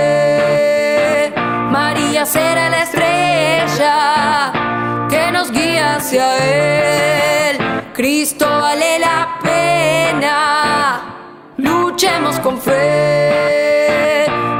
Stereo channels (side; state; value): both; identical; correlation 1.00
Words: María será la estrella que nos guía hacia Él. Cristo vale la pena, luchemos con fe.